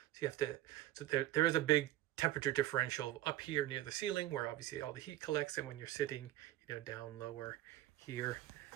so you have to, so there is a big temperature differential up here near the ceiling where obviously all the heat collects, and when you're sitting, you know, down lower here.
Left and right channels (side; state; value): left; quieter; 14.9 dB